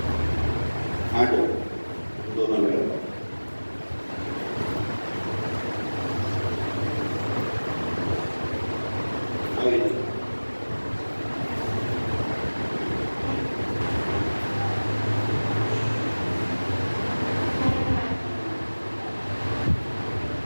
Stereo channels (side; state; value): both; inverted; correlation -1.00